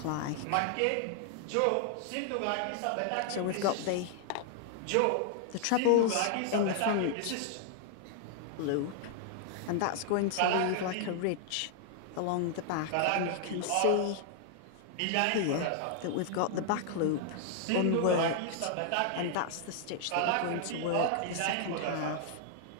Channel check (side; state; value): both; different; correlation -0.01